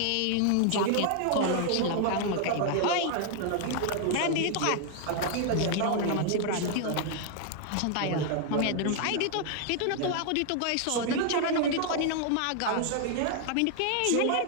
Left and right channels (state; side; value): different; both; correlation 0.00